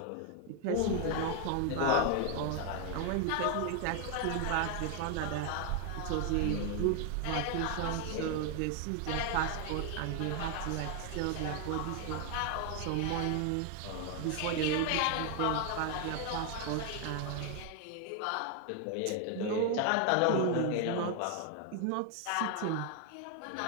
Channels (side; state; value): both; different; correlation 0.01